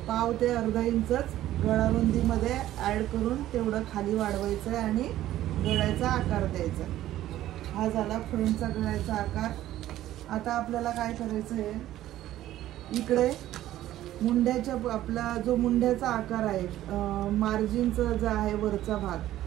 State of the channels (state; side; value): quieter; left; 13.8 dB